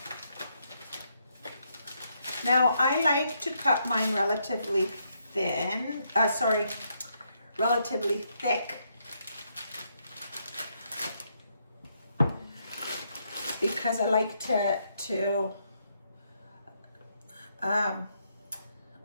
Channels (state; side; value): inverted; both; correlation -0.76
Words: Now, I like to cut mine relatively relatively thick. Because I like to